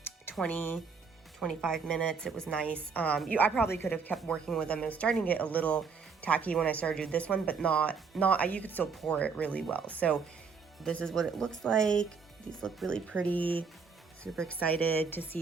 20-25 minutes. It was nice. I probably could have kept working with them. It was starting to get a little tacky when I started doing this one, but not, you could still pour it really well. So this is what it looks like. These look really pretty. Super excited to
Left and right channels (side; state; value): left; quieter; 5.4 dB